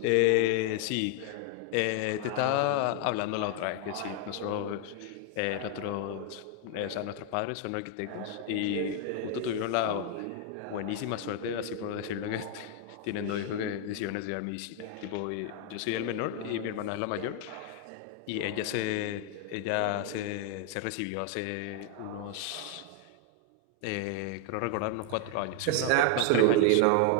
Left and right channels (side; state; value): both; different; correlation 0.00